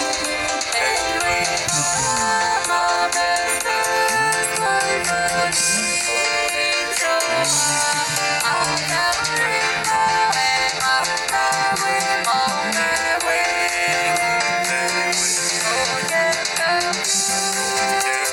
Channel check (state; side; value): identical; both; correlation 1.00